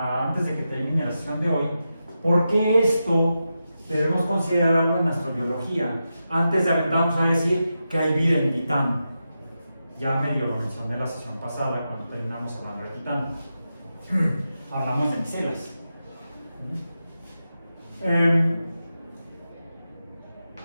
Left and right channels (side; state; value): both; inverted; correlation -0.89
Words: de que termine la sesión de hoy, por qué esto debemos considerarlo en astrobiología, antes de aventarnos a decir que hay vida en Titán. Ya medio lo mencioné la sesión pasada cuando terminamos hablando de Titán. Hablamos de micelas.